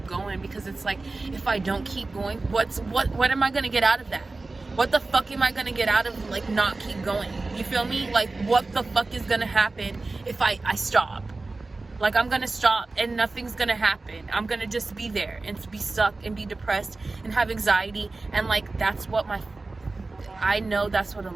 going, because it's like, if I don't keep going, what am I gonna get out of that? What the fuck am I gonna get out of like not keep going? You feel me? Like, what the fuck is gonna happen if I stop? Like, I'm gonna stop and nothing's gonna happen. I'm gonna just be there and be stuck and be depressed and have anxiety. And like, that's what I know that's what a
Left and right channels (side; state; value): left; quieter; 3.4 dB